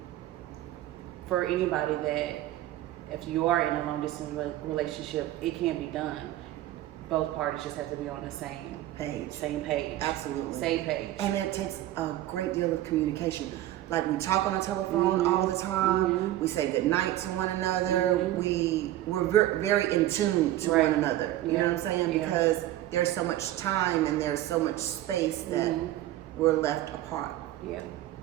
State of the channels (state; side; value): quieter; left; 14.4 dB